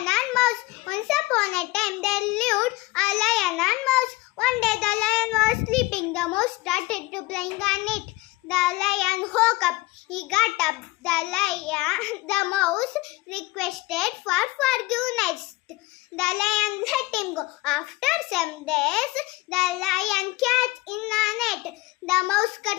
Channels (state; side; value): quieter; right; 21.3 dB